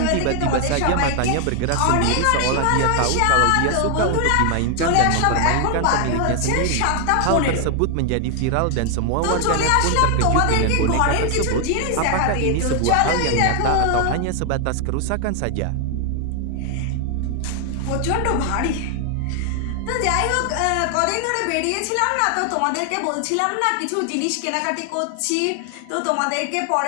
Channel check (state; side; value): different; both; correlation 0.00